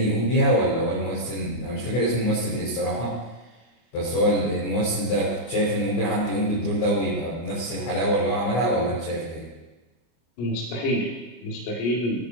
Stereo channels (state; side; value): late; right; 25 ms